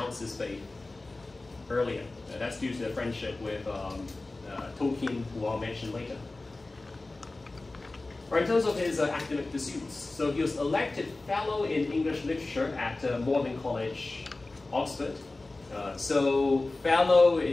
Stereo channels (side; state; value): right; quieter; 3.1 dB